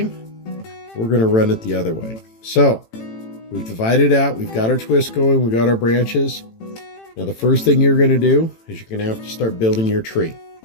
we're going to run it the other way. So we've divided out, we've got our twist going, we got our branches. Now the first thing you're going to do is you're going to have to start building your tree.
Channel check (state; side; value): late; right; 18 ms